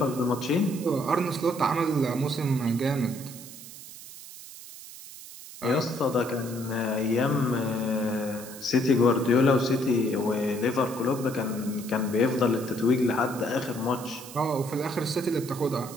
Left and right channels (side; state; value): right; noise; hiss, 15 dB below the sound